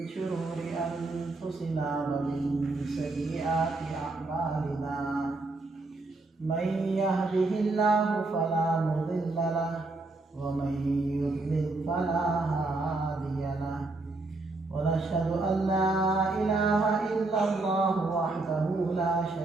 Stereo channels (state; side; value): quieter; left; 3.2 dB